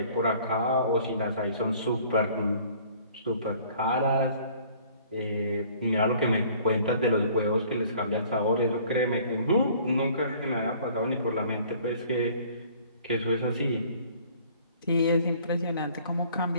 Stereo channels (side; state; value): both; inverted; correlation -0.54